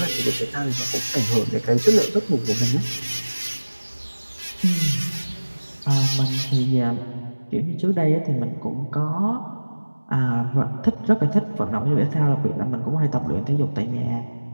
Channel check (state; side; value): inverted; both; correlation -1.00